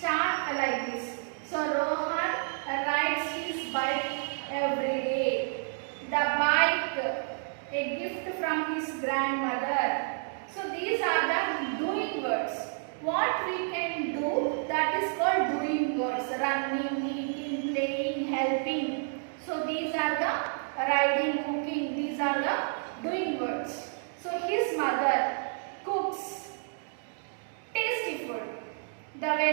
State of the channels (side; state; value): left; silent; digital silence